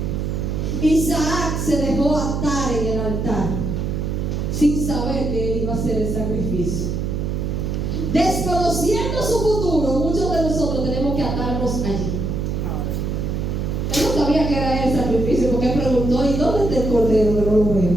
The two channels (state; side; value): noise; right; hum, 1 dB below the sound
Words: Isaac se dejó atar en el altar sin saber que él iba a hacer el sacrificio. Desconociendo su futuro, muchos de nosotros tenemos que atarnos allí. Él no sabía que era el sacrificio porque preguntó: ¿y dónde está el cordero que no lo